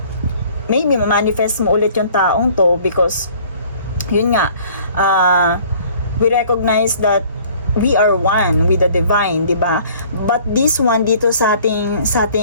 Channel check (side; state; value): both; inverted; correlation -0.54